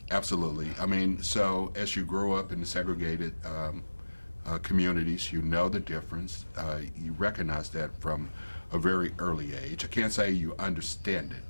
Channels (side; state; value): both; inverted; correlation -1.00